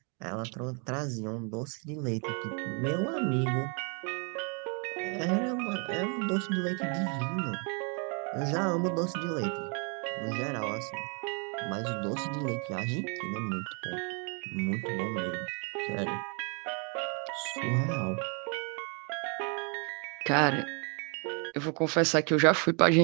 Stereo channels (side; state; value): left; quieter; 36.1 dB